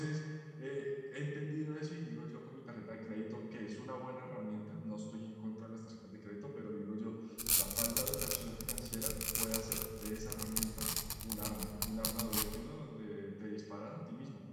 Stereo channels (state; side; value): identical; both; correlation 1.00